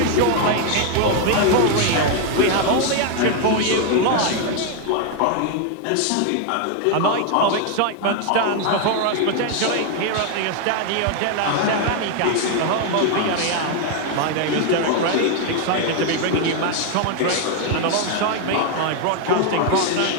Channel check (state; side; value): different; both; correlation 0.00